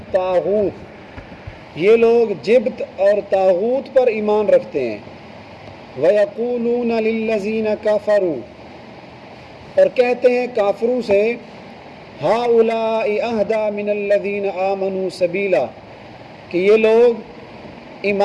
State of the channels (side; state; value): both; identical; correlation 1.00